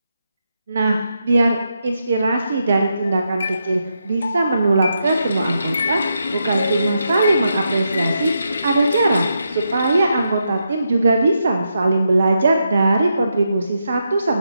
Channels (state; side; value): inverted; both; correlation -0.83